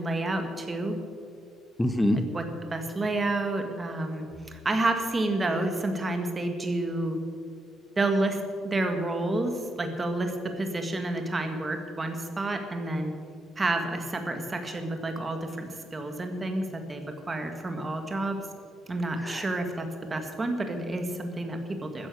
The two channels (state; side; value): normal; both; correlation 0.84